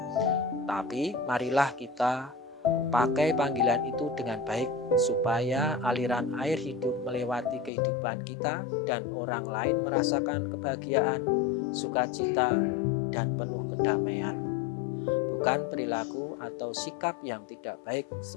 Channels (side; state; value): right; drops out; at 7.7 s